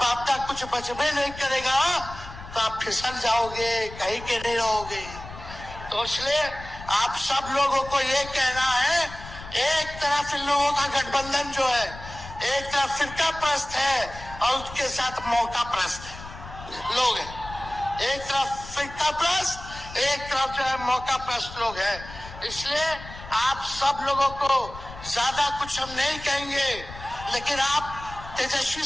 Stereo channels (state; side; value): noise; left; rumble, 14 dB below the sound